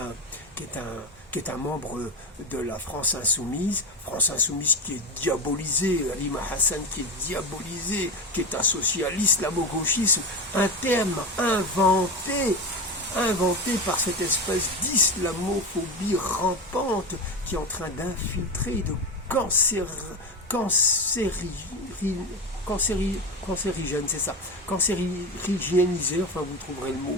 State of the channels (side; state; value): both; normal; correlation 0.20